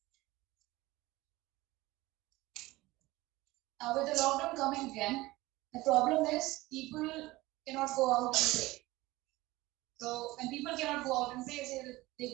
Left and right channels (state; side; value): quieter; left; 19.5 dB